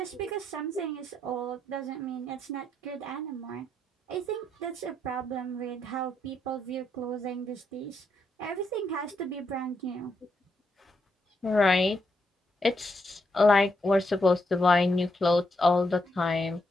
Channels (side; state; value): both; normal; correlation 0.79